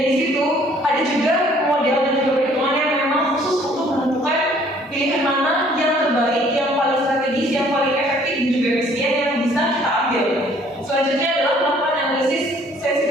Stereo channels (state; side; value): normal; both; correlation 0.59